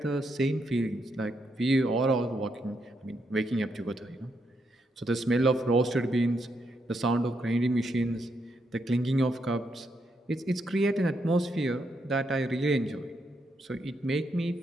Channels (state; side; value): normal; both; correlation 0.79